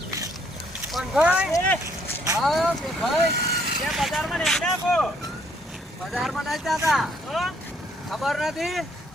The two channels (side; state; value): both; normal; correlation 0.67